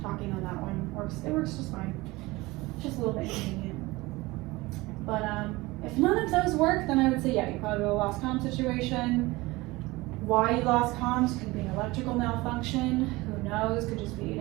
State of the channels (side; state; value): left; quieter; 21.3 dB